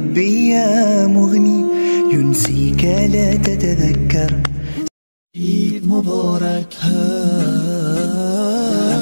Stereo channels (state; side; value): inverted; both; correlation -1.00